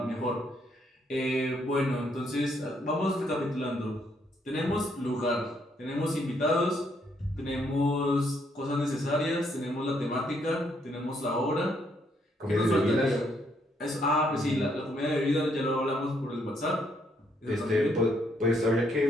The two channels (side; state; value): both; normal; correlation 0.72